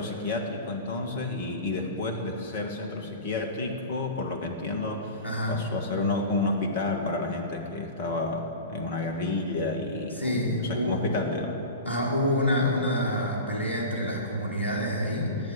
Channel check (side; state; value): both; inverted; correlation -0.31